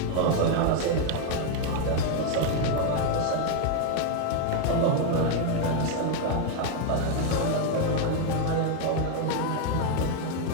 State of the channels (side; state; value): both; different; correlation 0.01